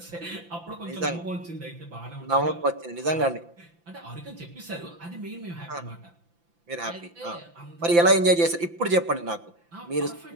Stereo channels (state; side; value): late; left; 5.9 ms